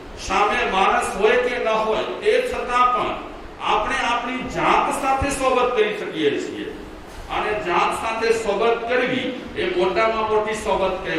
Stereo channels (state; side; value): identical; both; correlation 1.00